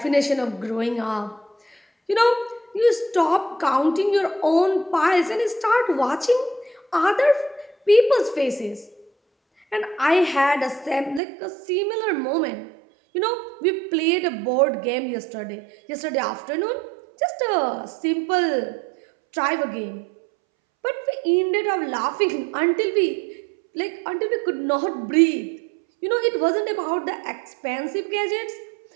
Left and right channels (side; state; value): left; drops out; at 11.2 s